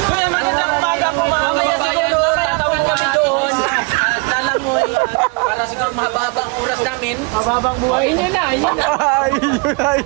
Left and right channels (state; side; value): quieter; left; 30.6 dB